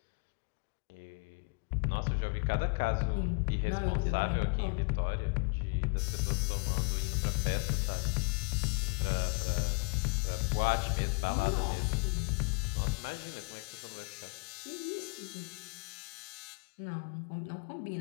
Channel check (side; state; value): right; quieter; 35.1 dB